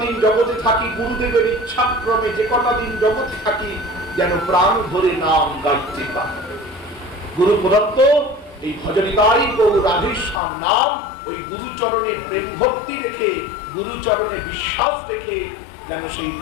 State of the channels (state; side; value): drops out; right; at 10.4 s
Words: দিন জগতে থাকি গুরুদেবের ইচ্ছাক্রমে, যে কটা দিন জগতে থাকি যেন প্রাণ ধরে নাম গাইতে পারি। গুরু প্রদত্ত এই ভজনিতাই গৌর রাধেশ্যাম নাম, ওই গুরুচরণে প্রেম ভক্তি রেখে, গুরুচরণে বিশ্বাস রেখে যেন সেই